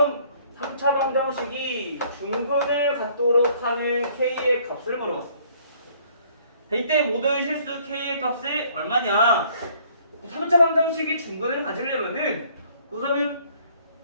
3차 방정식이 중근을 갖도록 하는 k의 값을 물어봤어. 이때 모든 실수 k의 값이 얼마냐? 3차 방정식이 중근을 가지려면은 우선은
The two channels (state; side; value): inverted; both; correlation -0.60